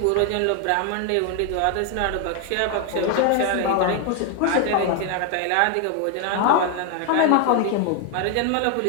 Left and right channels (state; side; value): different; both; correlation 0.01